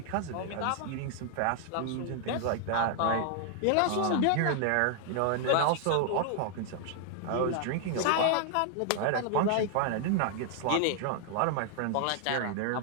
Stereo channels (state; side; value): different; both; correlation 0.00